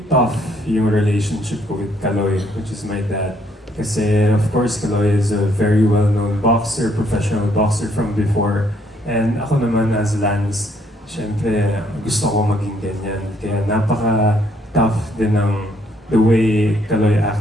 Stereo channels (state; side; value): normal; both; correlation 0.68